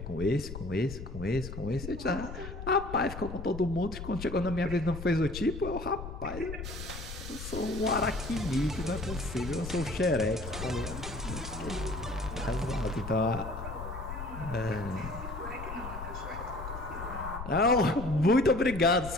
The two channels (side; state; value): left; noise; rumble, 9 dB below the sound